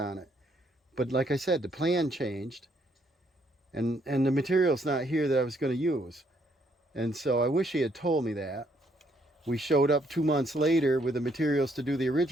it. But like I said, the plan changed, and the material's not here that I was going to use. And so I wish he had told me that. We showed up 2 months later with the materials to do the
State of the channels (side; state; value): both; normal; correlation 0.70